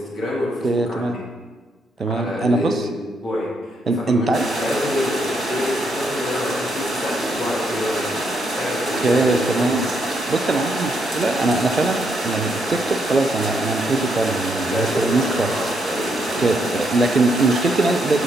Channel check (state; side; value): normal; both; correlation 0.77